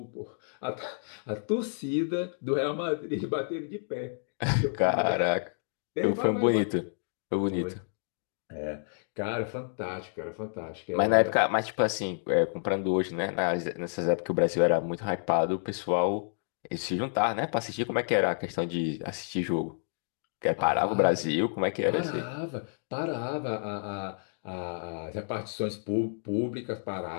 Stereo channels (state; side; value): silent; right; digital silence